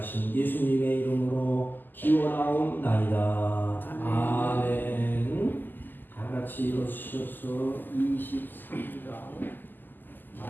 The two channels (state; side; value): late; right; 0.089 ms